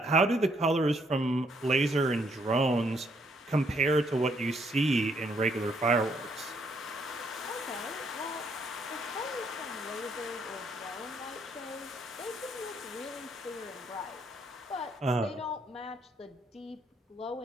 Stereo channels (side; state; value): both; normal; correlation 0.71